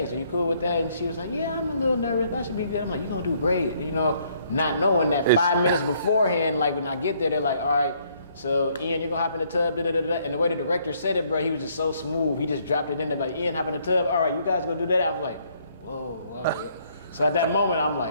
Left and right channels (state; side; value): inverted; both; correlation -0.67